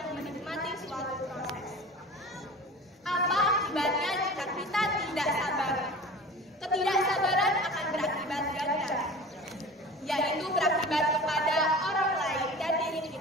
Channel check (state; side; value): normal; both; correlation 0.37